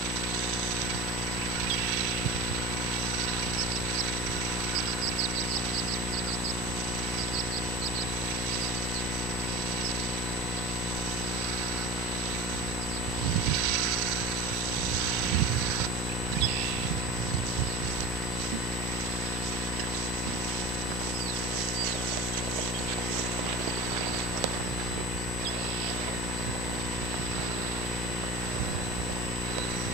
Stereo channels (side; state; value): both; normal; correlation 0.33